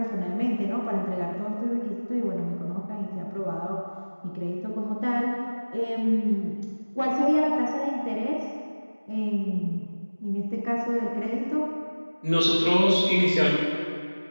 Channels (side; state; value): both; inverted; correlation -1.00